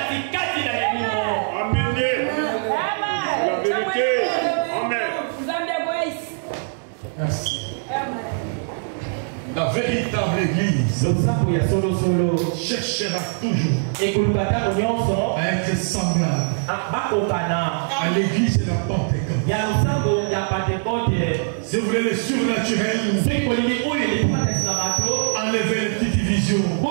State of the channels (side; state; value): left; silent; digital silence